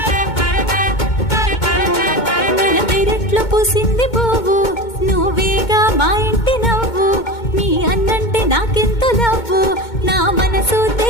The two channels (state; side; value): late; right; 2.2 ms